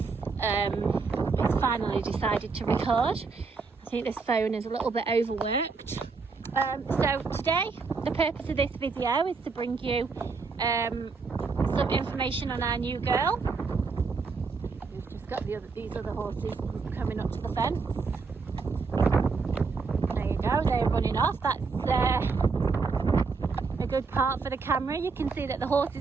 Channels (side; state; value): left; quieter; 4.7 dB